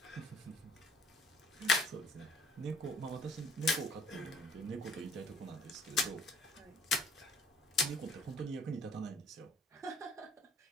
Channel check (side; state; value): both; normal; correlation 0.58